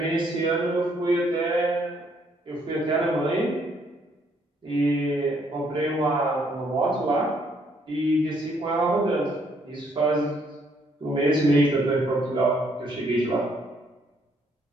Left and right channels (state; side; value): normal; both; correlation 0.68